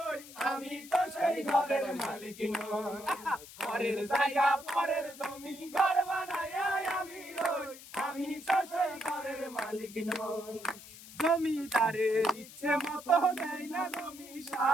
আমি তো সেই ঘরের মালিক নই। ঘরের জায়গা পরের জমি, ঘর বানাইয়া আমি রই, আমি তো সেই ঘরের মালিক নই। জমিদারের ইচ্ছে মতো দেয় না জমি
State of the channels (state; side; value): noise; left; hiss, 17 dB below the sound